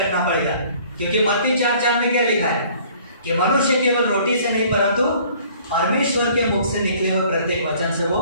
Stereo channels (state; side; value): inverted; both; correlation -0.55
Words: पड़ेगा। क्योंकि मत्ती 4:4 में क्या लिखा है कि मनुष्य केवल रोटी से नहीं परंतु परमेश्वर के मुख से निकले हुए प्रत्येक वचन से